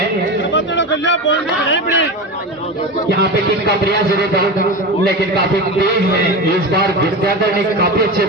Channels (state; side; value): normal; both; correlation 0.24